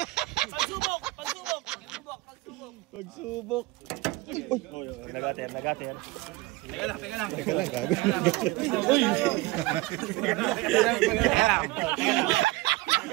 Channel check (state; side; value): quieter; left; 20.2 dB